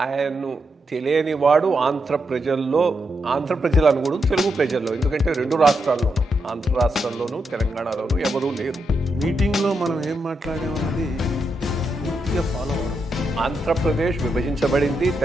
ఆయన్ను తెలియనివాడు ఆంధ్ర ప్రజలు అనకూడదు, తెలుగు ప్రజల్లో, ఎందుకంటే రెండు రాష్ట్రాల్లోనూ, ఆంధ్ర రాష్ట్రంలోనూ తెలంగాణలోనూ ఎవరూ లేరు. మీటింగ్లో మనం ఏం మాట్లాడామన్నది పూర్తిగా ఫాలో అవ్వడం. ఆంధ్రప్రదేశ్ విభజించబడింది,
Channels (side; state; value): both; normal; correlation 0.83